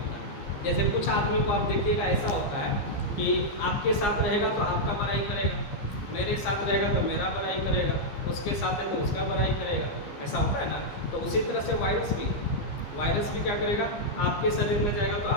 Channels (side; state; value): right; late; 15 ms